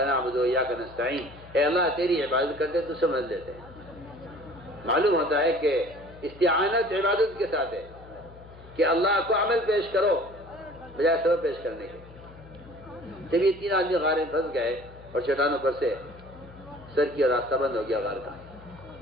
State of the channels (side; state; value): left; noise; hum, 20 dB below the sound